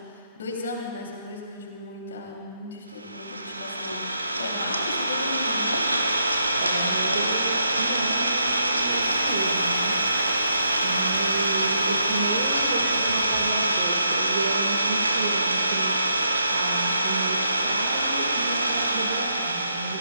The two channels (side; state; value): both; inverted; correlation -0.77